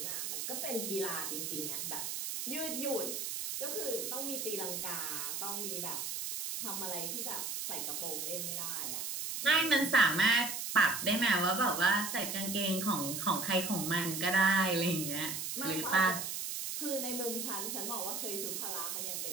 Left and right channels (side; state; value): right; noise; hiss, 3 dB below the sound